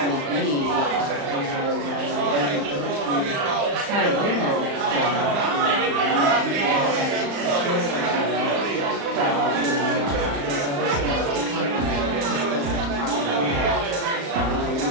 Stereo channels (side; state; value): left; late; 35 ms